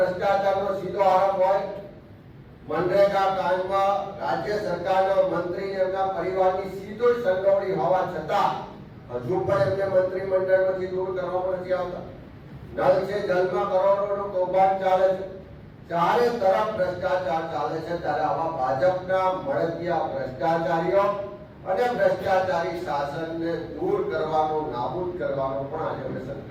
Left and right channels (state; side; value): identical; both; correlation 1.00